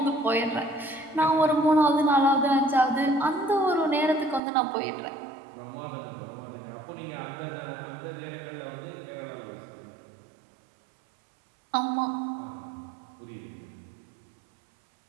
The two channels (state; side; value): drops out; left; at 4.4 s